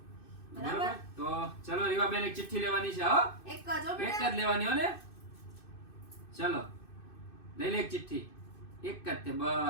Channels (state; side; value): late; right; 2.6 ms